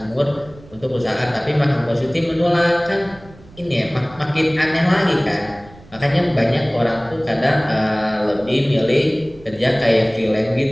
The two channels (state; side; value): noise; right; rumble, 22 dB below the sound